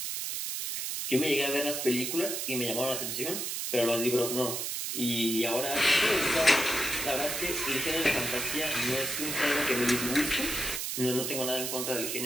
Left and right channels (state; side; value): noise; right; hiss, 3 dB below the sound